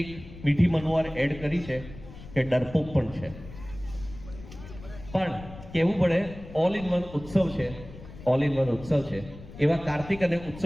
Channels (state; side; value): noise; left; rumble, 16 dB below the sound